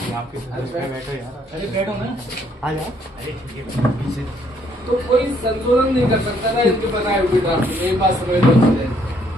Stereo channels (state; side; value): normal; both; correlation 0.68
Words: आपके बैठो यार, अरे बैठो ना, आ जाओ। अरे पीछे तो कोई संशोधन नहीं कर सकता था इनके बनाए हुए ड्राफ्ट में, एक बात समझ लो।